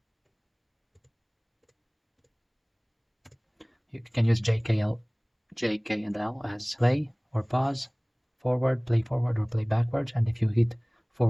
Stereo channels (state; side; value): identical; both; correlation 1.00